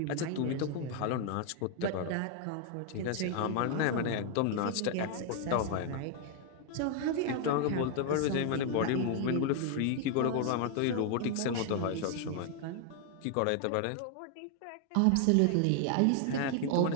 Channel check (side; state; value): both; different; correlation 0.00